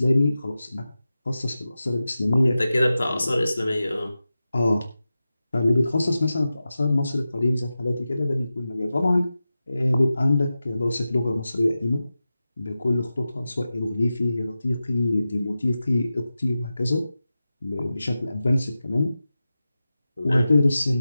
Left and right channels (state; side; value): inverted; both; correlation -0.93